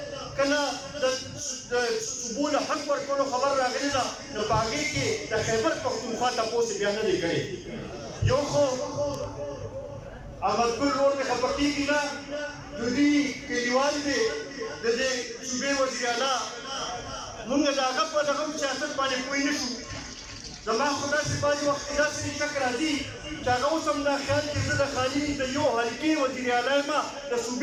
کله د صوبو له حق ورکولو خبر راغلی ده نو په هغې کې د خیبر پښتونخوا تپوس بیا نه دی کړی. یو خو احمدګل ورور مې خفه کېږي نه د دوی کلیوال دی د دې صوبې وزیر اعلی موږ د هغه په دغه سیاست باندې پوه نه شو. زما خو داسې بعضې وخت کې داسې شک راځي چې هغه اوس هم دا خیال چې زه د خالي د یو حلقې وزیر اعلی یم د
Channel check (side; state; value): both; identical; correlation 1.00